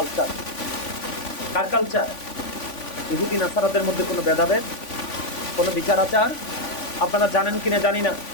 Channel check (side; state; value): right; late; 3.5 ms